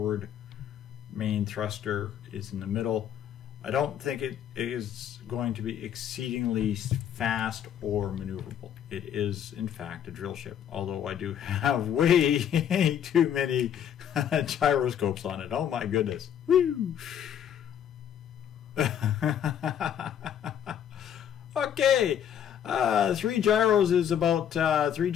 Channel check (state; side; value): quieter; right; 9.4 dB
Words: Main thruster is in the middle. I don't think it is going to be exceedingly fast or maneuverable. It is, in fact, a drill ship, although I do have way too many gyroscopes on it. Oh my goodness. Woo! Okay, 3 gyros is about 3